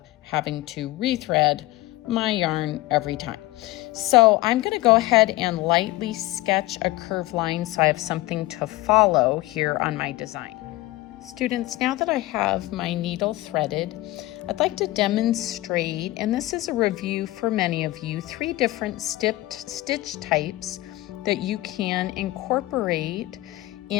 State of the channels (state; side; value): quieter; right; 18.3 dB